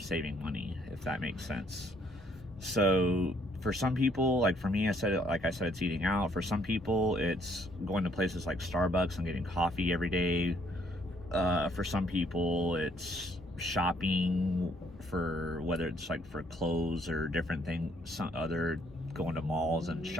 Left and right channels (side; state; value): both; normal; correlation 0.66